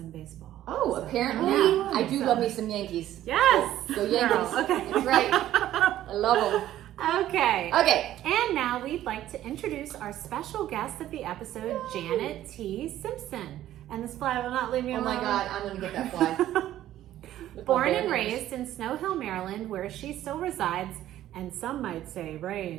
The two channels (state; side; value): quieter; left; 13.1 dB